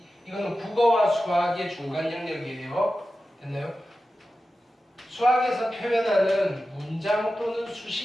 이거는 국어와 수학의 중간 영역이에요. 됐나요? 수학에서 표현하는 문장 또는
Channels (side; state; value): both; normal; correlation 0.93